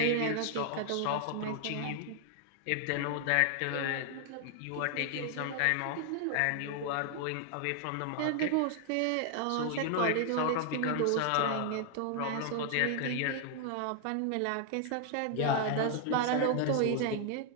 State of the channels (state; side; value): different; both; correlation 0.00